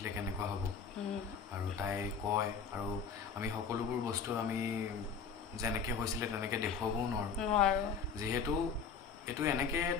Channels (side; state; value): right; quieter; 6.0 dB